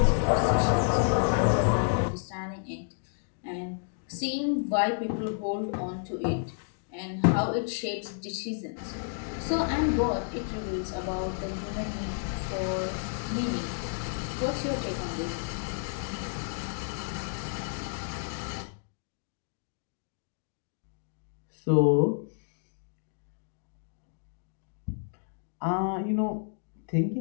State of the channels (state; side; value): silent; right; digital silence